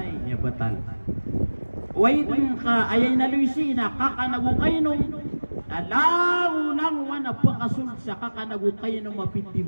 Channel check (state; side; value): inverted; both; correlation -1.00